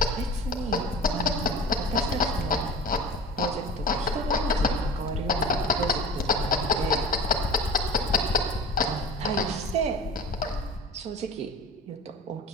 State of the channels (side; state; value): both; normal; correlation 0.36